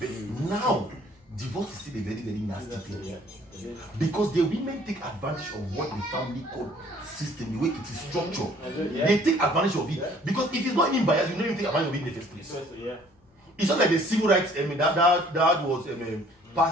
now, divorce is still a very, very nasty thing. Because the women take advantage of what the family court system, the way it is structured. They take advantage of it. Because if it's not even biased, you don't even take advantage of it in the first place. It's not like the civil rights, I mean, that was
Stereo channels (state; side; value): normal; both; correlation 0.57